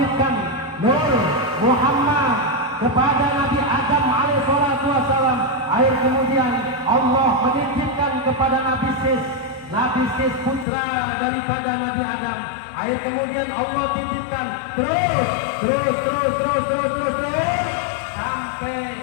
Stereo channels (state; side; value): drops out; right; at 10.7 s